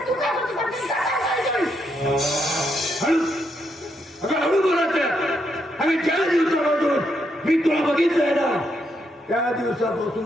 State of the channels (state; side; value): normal; both; correlation 0.78